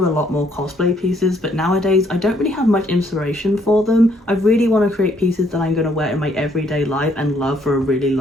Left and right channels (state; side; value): normal; both; correlation 0.68